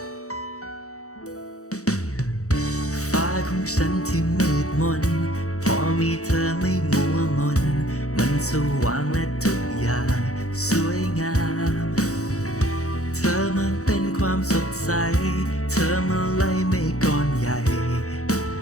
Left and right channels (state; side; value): late; right; 0.65 ms